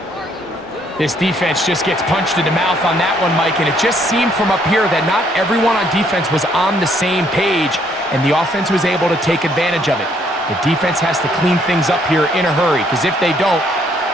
This defense just gets punched in the mouth on that one, Mike, and it just seemed from up here that not everyone on defense was on the same page, and the offense was able to take advantage of it. The defense has to clean things up here in a hurry, because if they don't,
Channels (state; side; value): normal; both; correlation 0.68